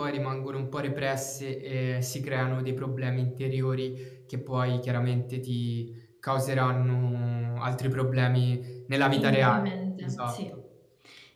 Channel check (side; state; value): both; identical; correlation 1.00